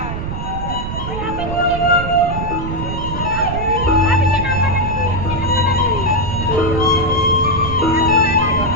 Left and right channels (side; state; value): right; noise; rumble, 5 dB below the sound